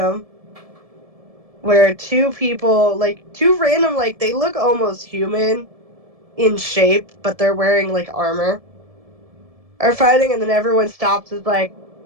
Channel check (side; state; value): left; late; 1.7 ms